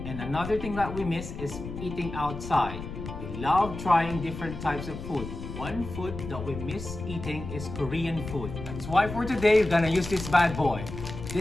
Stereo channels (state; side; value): noise; left; rumble, 9 dB below the sound